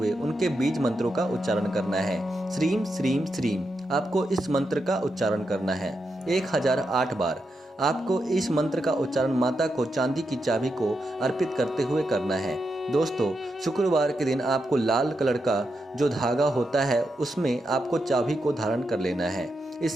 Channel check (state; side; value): normal; both; correlation 0.85